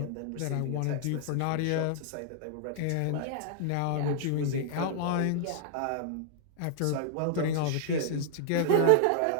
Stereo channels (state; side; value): different; both; correlation 0.00